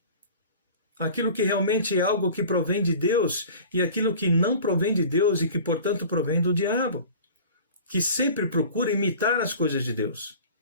Aquilo que realmente é algo que provém de Deus e aquilo que não provém de Deus e que, portanto, provém do diabo. Que sempre procura imitar as coisas de Deus.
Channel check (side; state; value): both; inverted; correlation -0.42